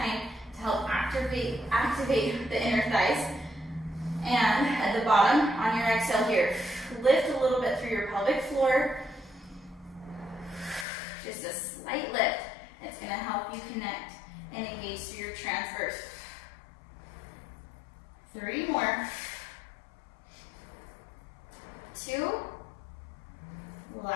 to help activate the inner thighs. And at the bottom, on your exhale here, lift a little bit through your pelvic floor. Just a slight lift. It's going to help you connect and engage through your transverse. 3 more. 2.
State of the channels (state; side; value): drops out; right; at 10.9 s